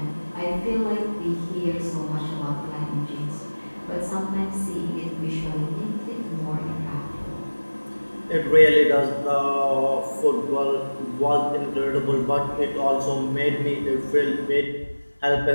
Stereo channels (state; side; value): inverted; both; correlation -1.00